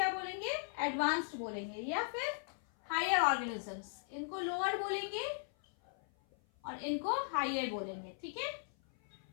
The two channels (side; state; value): right; silent; 53 dB below the other